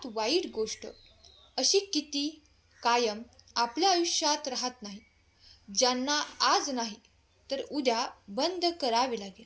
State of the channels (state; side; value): identical; both; correlation 1.00